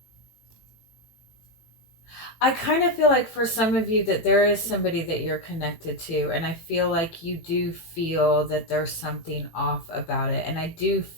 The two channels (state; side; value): late; right; 18 ms